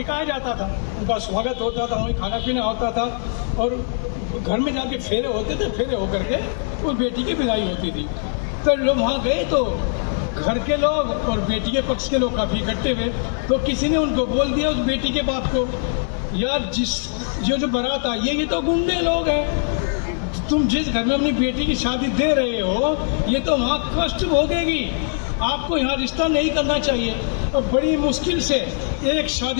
जाता था, उनका स्वागत होता था, वहीं खाना पीना होता था और घर में जाके फेरे होते थे, फेरे होकर के वो बेटी की विदाई होती थी। तो लोग वहाँ गए तो घर के लोग और बेटी के पक्ष के लोग काफ़ी इकट्ठे हुए, तो किसी ने उनको बोल दिया उस बेटी के बाप को, यार ये जो बारात आई है ये तो गुंडे लोग हैं, तुम जिस घर में अपनी बेटी की शादी दे रहे हो ये तो वहाँ कष्ट भोगेगी, आपको यहाँ रिश्ता नहीं करना चाहिए। और बड़ी मुश्किल से एक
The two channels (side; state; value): right; silent; digital silence